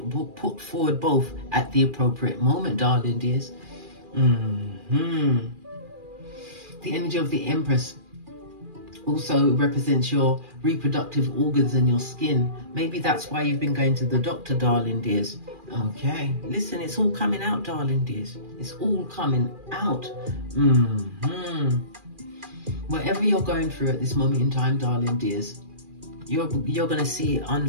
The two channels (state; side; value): late; left; 2.4 ms